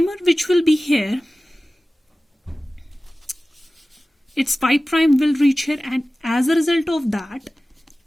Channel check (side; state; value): both; normal; correlation 0.96